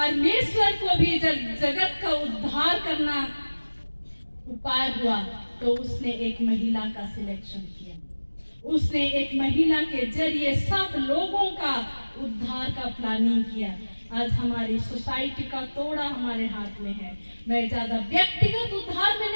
को भी जगत का उद्धार करना उपाय हुआ तो उसने एक महिला का सिलेक्शन किया। उसने एक महिला के जरिए सब लोगों का उद्धार का प्लानिंग किया। आज हमारी सोसाइटी का तोड़ा हमारे हाथ में है। मैं ज्यादा व्यक्तिगत उद्धार में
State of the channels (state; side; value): inverted; both; correlation -1.00